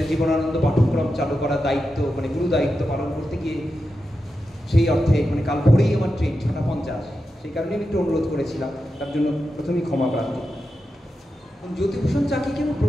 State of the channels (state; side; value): normal; both; correlation 0.89